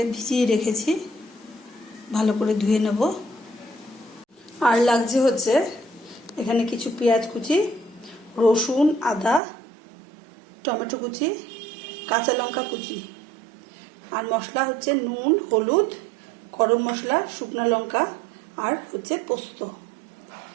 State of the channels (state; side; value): drops out; left; at 9.4 s